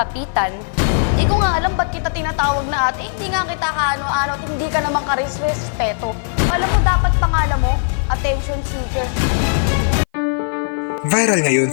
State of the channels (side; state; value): right; silent; 57 dB below the other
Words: Hindi ko nga alam ba't kita tinatawag na ate. Hindi nga kita kaano-ano at hindi ka naman karespeto. Alam mo, dapat pangalan mo, attention seeker. Viral ngayon